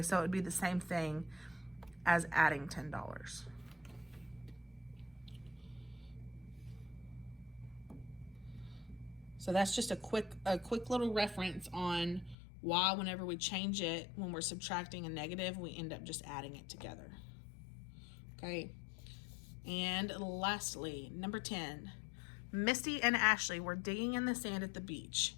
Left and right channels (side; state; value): right; drops out; at 12.4 s